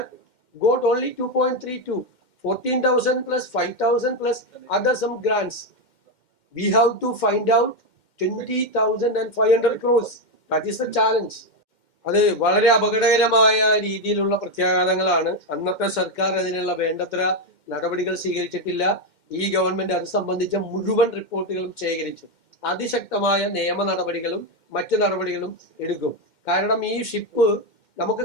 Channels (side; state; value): right; late; 2.1 ms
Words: got only 2.32. 14,000 plus 5,000 plus other some grants. We have to find out 20,500 crores. That is the challenge. അത് വളരെ അപകടകരമായ രീതിയിലുള്ള പ്രത്യാഘാതങ്ങളാണ്. അന്നത്തെ സർക്കാർ അതിനുള്ള വേണ്ടത്ര നടപടികൾ സ്വീകരിച്ചിട്ടില്ല. ഈ ഗവൺമെന്റ് അത് സംബന്ധിച്ച മുഴുവൻ റിപ്പോർട്ടുകളും ശേഖരിച്ചു. അതിശക്തമായ നിയമ നടപടികളും മറ്റു നടപടികളും എടുക്കും. കാരണം ഈ ഷിപ്പ് നമുക്ക്